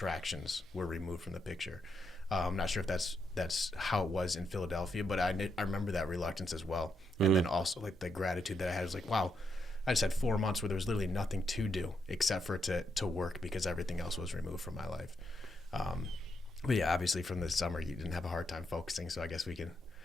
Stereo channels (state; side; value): normal; both; correlation 0.80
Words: were removed from the picture. I'm not sure if that's how it was in Philadelphia, but I remember that reluctance as well, and then also like the gratitude that I had. Was like, wow, I just had 4 months where there was literally nothing to do except for to work, because everything else was removed from my life. But yeah, obviously from the summer you didn't have a hard time focusing, so I guess we can